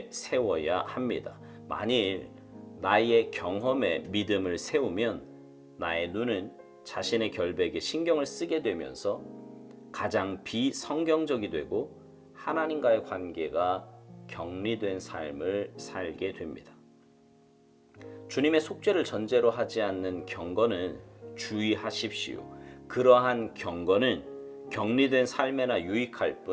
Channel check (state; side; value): identical; both; correlation 1.00